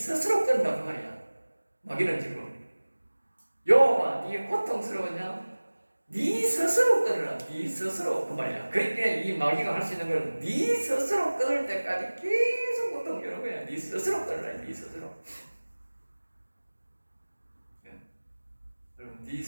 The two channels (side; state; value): both; inverted; correlation -1.00